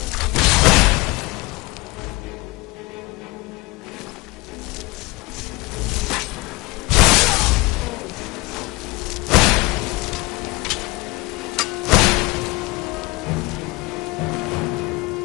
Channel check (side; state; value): right; quieter; 23.0 dB